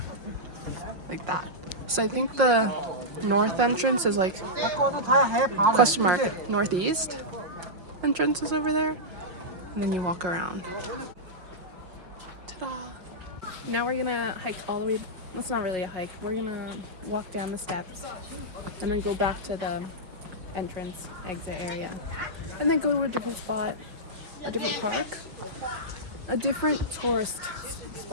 like that. So I think the north entrance is like question mark northeast entrance is over there, and then you walk around. Ta-da! Now we're gonna hike all the way. It's not really a hike. We're gonna walk down the steps and then go back to the entrance exit area, and then go to a different spot, a different park, a different tourist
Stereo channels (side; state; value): left; late; 5.5 ms